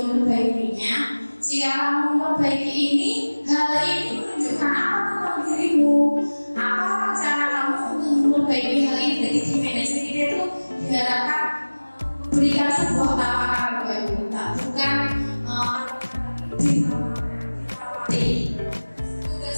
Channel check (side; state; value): both; inverted; correlation -1.00